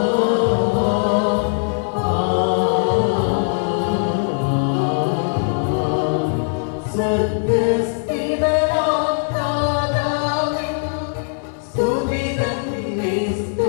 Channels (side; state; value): right; silent; digital silence